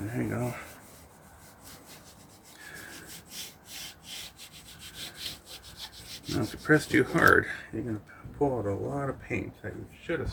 you go. Now, if you press too hard, you're going to pull out a lot of paint that you should have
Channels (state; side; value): identical; both; correlation 1.00